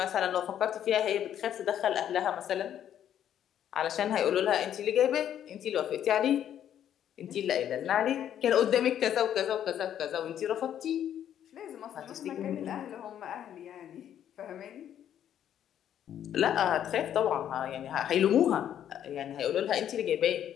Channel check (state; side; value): quieter; right; 10.2 dB